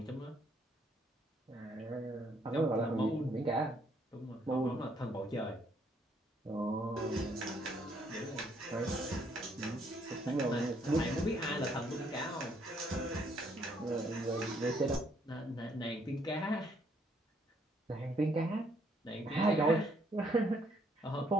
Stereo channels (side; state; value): both; normal; correlation 0.69